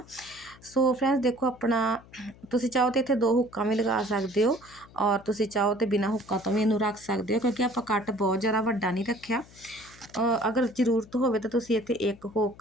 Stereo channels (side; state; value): left; noise; hum, 23 dB below the sound